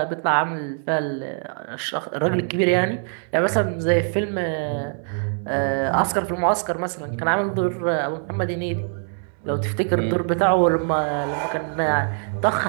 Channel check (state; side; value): silent; left; 60 dB below the other